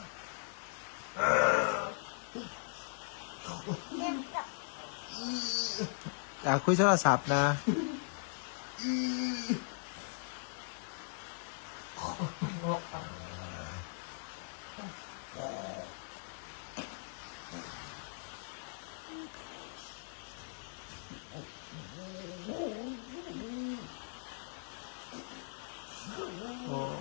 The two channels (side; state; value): right; silent; 52 dB below the other